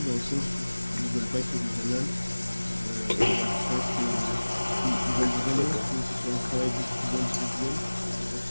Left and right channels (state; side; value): inverted; both; correlation -1.00